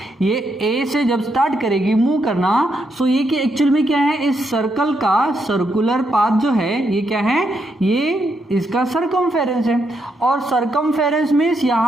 ये ए से जब स्टार्ट करेगी मूव करना, सो ये कि एक्चुअल में क्या है? इस सर्कल का सर्कुलर पाथ जो है ये क्या है? ये इसका सर्कमफेरेंस है। और सर्कमफेरेंस मीन्स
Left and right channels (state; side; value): normal; both; correlation 0.79